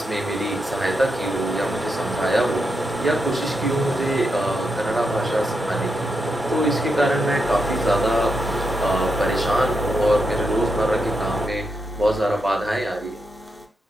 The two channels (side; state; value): both; normal; correlation 0.83